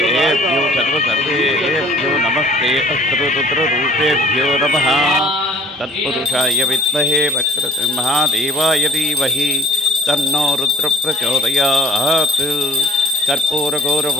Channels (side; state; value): both; normal; correlation 0.52